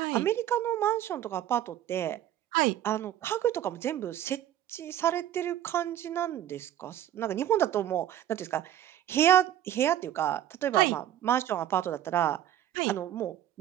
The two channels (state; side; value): quieter; left; 11.8 dB